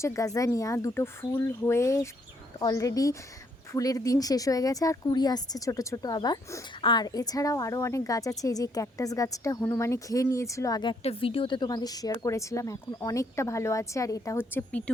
গাজানিয়া, দুটো ফুল হয়ে অলরেডি ফুলের দিন শেষ হয়ে গেছে, আর কুড়ি আসছে ছোট ছোট আবার। আর এছাড়াও আরও অনেক গাছ আছে। এই যে ক্যাকটাস গাছটা হনুমানে খেয়ে নিয়েছিল, আগে একটা ভিডিওতে তোমাদের শেয়ার করেছিলাম, এখন অনেকটা ভালো আছে। আর এটা হচ্ছে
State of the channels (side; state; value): both; normal; correlation 0.71